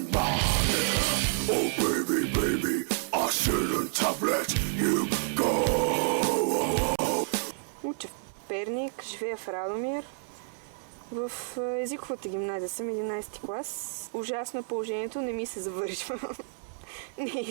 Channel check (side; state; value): left; silent; 58 dB below the other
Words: right here? Oh baby, baby, I shouldn't have let you go. Уча в Перник, живея в Радомир. В езиковата гимназия съм 11 клас. Ужасно е положението, не ми се завършва. Не